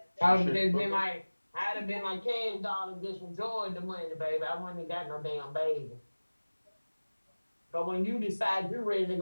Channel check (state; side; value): inverted; both; correlation -1.00